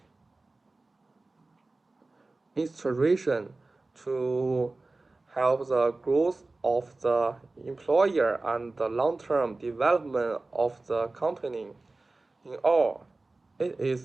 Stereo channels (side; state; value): left; quieter; 3.2 dB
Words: inspiration to help the growth of the employer and the long-term development of the company. In all, it